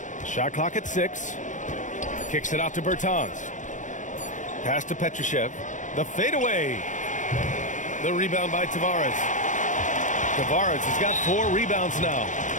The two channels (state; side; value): late; right; 0.36 ms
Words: Shot clock at 6. Kicks it out to Bertans. Pass to Petrushev. The fadeaway. The rebound by Tavares. Tavares has got 4 rebounds now.